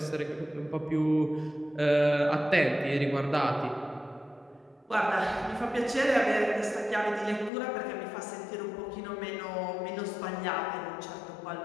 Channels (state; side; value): drops out; right; at 7.5 s